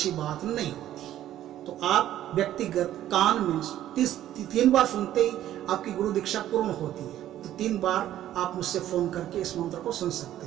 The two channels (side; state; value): left; quieter; 12.5 dB